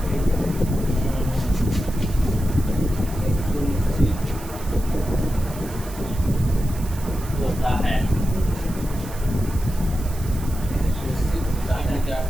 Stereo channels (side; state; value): right; noise; hiss, 16 dB below the sound